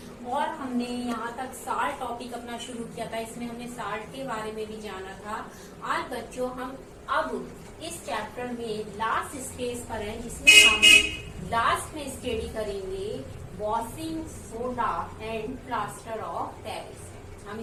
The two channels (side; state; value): both; identical; correlation 1.00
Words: और हमने यहाँ तक साल्ट टॉपिक अपना शुरू किया था। इसमें हमने साल्ट के बारे में भी जाना था। आज बच्चों हम अब इस चैप्टर में लास्ट स्टेज पर हैं, जिसमें हम लास्ट में स्टडी करेंगे washing soda and plaster of Paris. हम